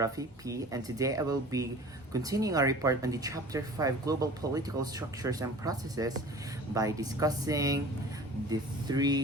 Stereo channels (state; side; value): normal; both; correlation 0.42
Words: P, and today I will be continuing our report on the Chapter 5 Global Political Structures and Processes by discussing the